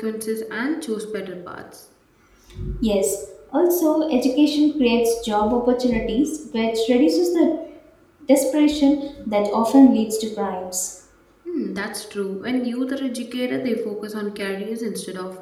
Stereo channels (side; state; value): both; identical; correlation 1.00